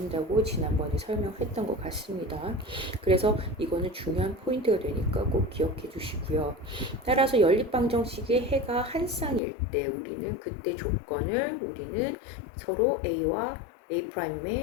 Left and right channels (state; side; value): drops out; right; at 9.4 s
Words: 지난번에 설명했던 것 같습니다. 그래서 이거는 중요한 포인트가 되니까 꼭 기억해 주시고요. 따라서 연립방정식의 해가 한 쌍일 때 우리는 그때 조건을 우리는 서로 A와